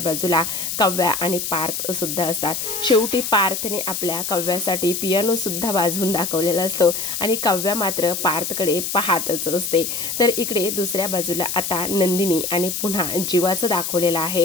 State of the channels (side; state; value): left; noise; hiss, 3 dB below the sound